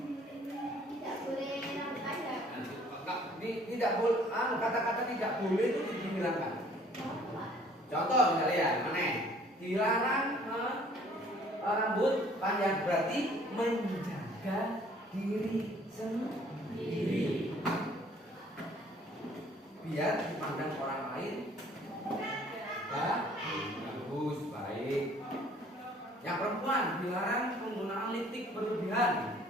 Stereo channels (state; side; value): normal; both; correlation 0.57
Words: Tidak boleh. Kata-kata tidak boleh itu dihilangkan. Contoh misalnya ya, mana? Dilarang rambut panjang berarti menjaga diri sendiri. Biar dipandang orang lain bagus, baik. Yang perempuan dilarang menggunakan lipstik berlebihan.